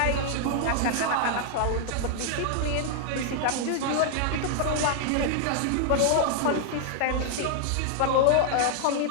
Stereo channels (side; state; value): both; different; correlation -0.01